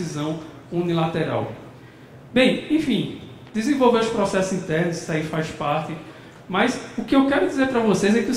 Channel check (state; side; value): identical; both; correlation 1.00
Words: unilateral. Bem, enfim, desenvolver os processos internos, isso aí faz parte. Mas o que eu quero dizer para vocês é que é o